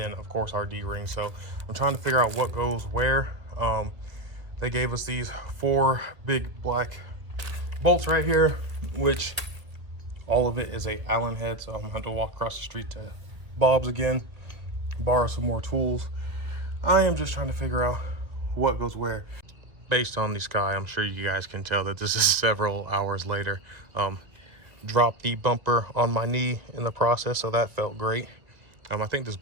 of course our D-ring. So I'm trying to figure out what goes where. They gave us these 4 big black bolts right here, which all of it is a Allen head, so I'm gonna have to walk across the street to Bob's again, borrow some more tools. I am just trying to figure out what goes where. Based on the sky, I'm sure you guys can tell that this is several hours later. Dropped the bumper on my knee in the process, so that felt great. I think this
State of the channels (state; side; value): late; left; 1.7 ms